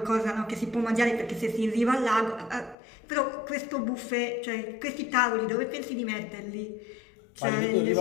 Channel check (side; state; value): right; drops out; at 2.8 s